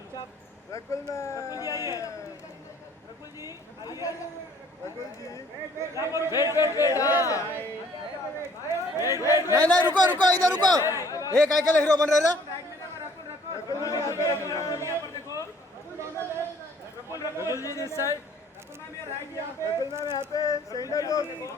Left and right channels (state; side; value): normal; both; correlation 0.58